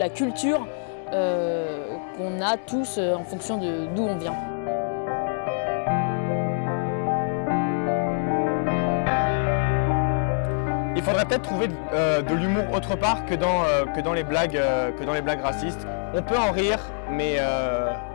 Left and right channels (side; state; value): right; silent; digital silence